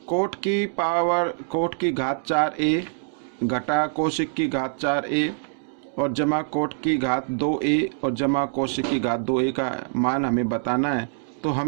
कोट की घात 4a घटा कोशिक की घात 4a और जमा कोट की घात 2a और जमा कोशिक की घात 2a का मान हमें बताना है। तो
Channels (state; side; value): silent; left; digital silence